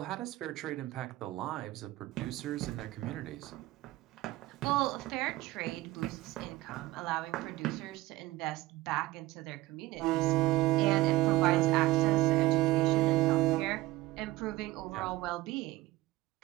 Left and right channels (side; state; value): left; quieter; 18.3 dB